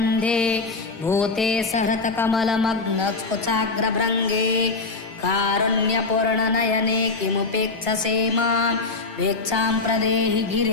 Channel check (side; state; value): right; quieter; 3.8 dB